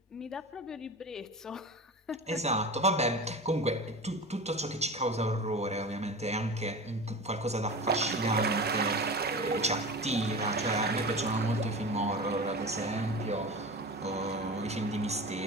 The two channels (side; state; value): both; normal; correlation 0.30